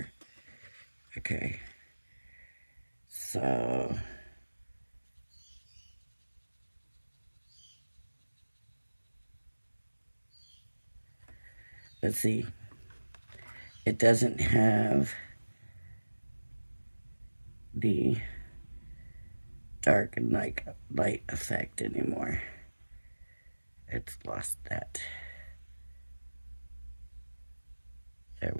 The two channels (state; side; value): inverted; both; correlation -1.00